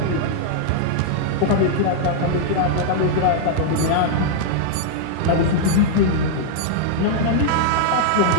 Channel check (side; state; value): both; different; correlation -0.01